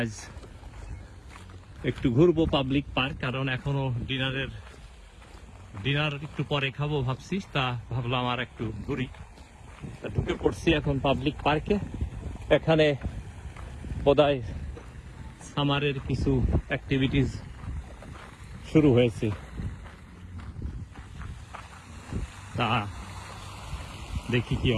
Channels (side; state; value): both; identical; correlation 1.00